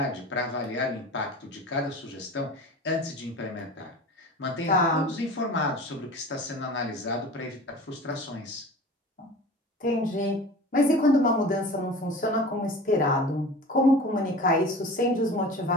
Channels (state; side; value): normal; both; correlation 0.37